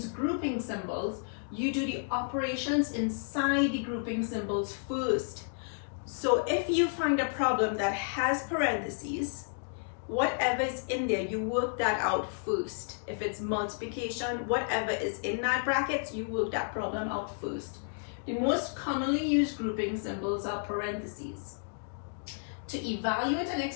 grouping symbols, you do the operations inside the grouping symbols first. So if you find a problem that has parentheses, whatever is in there, you work that out first. If it's multiplication, whatever is in that bracket, you work that problem out first. The most commonly used grouping symbols are parentheses. To evaluate an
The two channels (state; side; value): silent; right; digital silence